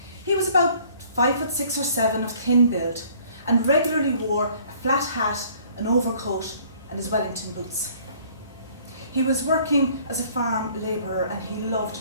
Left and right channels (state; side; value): inverted; both; correlation -0.56